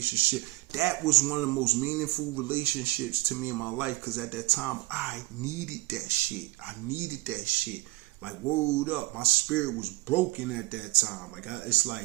That was one of the most meaningful relationships to me in my life, because at that time, I needed that shit. Like, word up. My spirit was broken at that time. Like, it's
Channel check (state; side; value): quieter; left; 21.2 dB